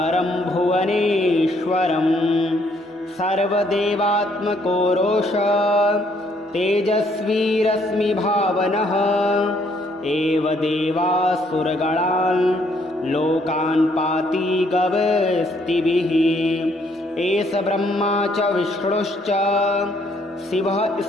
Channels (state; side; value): normal; both; correlation 0.68